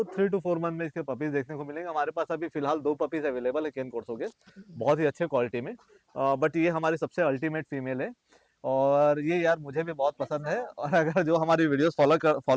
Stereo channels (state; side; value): identical; both; correlation 1.00